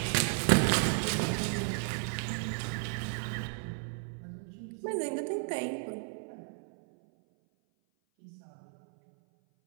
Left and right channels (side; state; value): left; silent; 55 dB below the other